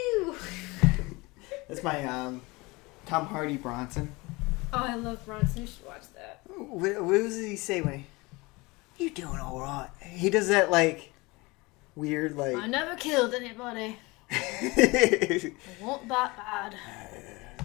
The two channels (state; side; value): quieter; right; 24.0 dB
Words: That's my Tom Hardy Bronson. Oh, I love Bronson. You should watch that. What does he say when you doing all right? He does that like weird like. I never killed anybody. I want that bad.